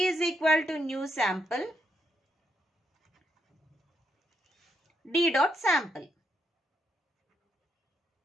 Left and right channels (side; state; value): both; normal; correlation 0.78